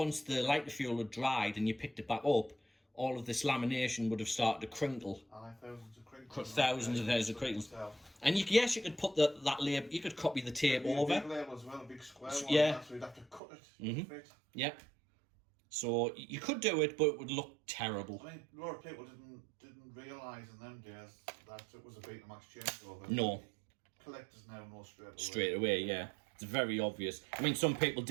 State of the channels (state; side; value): drops out; left; at 13.4 s